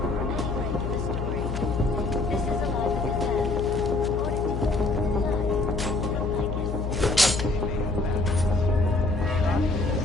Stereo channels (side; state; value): left; noise; hum, 3 dB below the sound